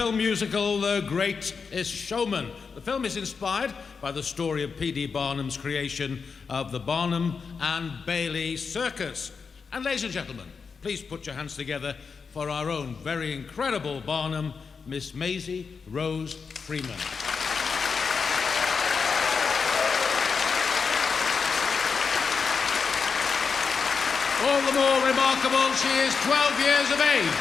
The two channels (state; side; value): quieter; right; 5.4 dB